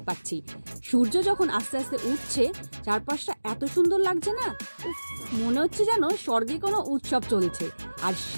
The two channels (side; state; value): both; inverted; correlation -1.00